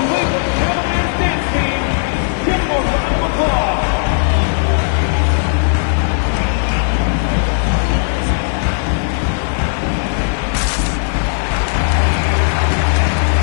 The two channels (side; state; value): right; silent; 69 dB below the other